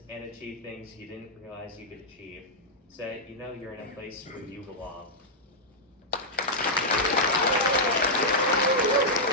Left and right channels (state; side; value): normal; both; correlation -0.07